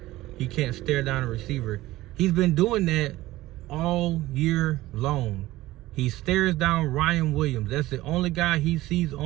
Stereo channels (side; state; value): left; quieter; 17.1 dB